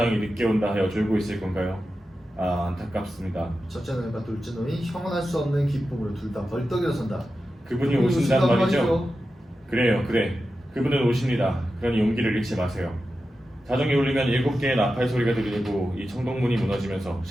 늦게 온다 하여 졸고 있을 건가요? 아 안타깝습니다. 첫째 노인과 둘째 노인 형언할 수 없는 기쁨으로 둘 다 벌떡 일어선다. 그분이 오신단 말이죠? 그래요 그래. 그분은 오십니다. 그러니 용기를 잃지 마세요. 자정이 울리면 7개의 나팔 소리가 들리고 이 청동문이 무너지면서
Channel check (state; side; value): normal; both; correlation 0.91